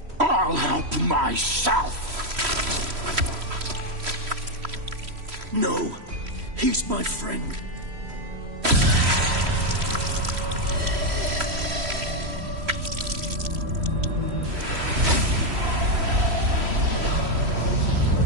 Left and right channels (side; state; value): left; late; 3.1 ms